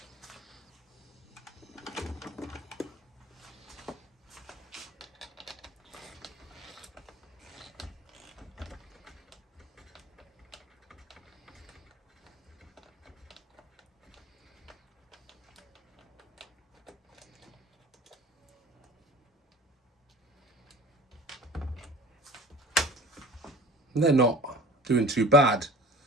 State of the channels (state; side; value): normal; both; correlation 0.41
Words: They're not doing too bad,